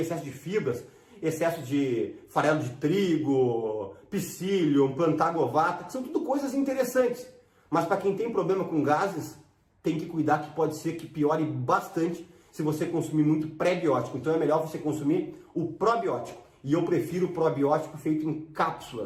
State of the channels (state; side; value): identical; both; correlation 1.00